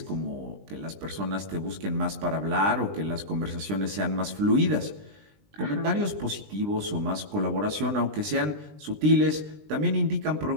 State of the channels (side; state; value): left; late; 20 ms